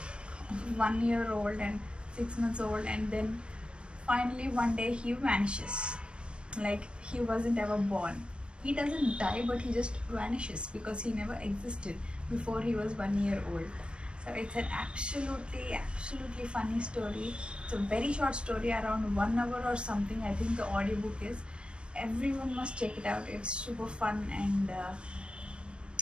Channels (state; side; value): late; left; 0.057 ms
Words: 1 year old and 6 months old, and then finally one day he vanishes, like he wasn't ever born. He doesn't die, but he just vanishes because he never existed before he was 1 year old. So it's an absolutely funny story. It's a very short story, around 1 hour or something. I think the audiobook is. Everyone must check it out. It's super fun, and